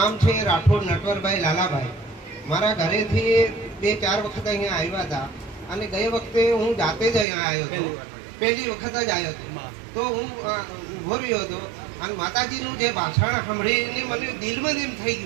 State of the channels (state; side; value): drops out; left; at 7.2 s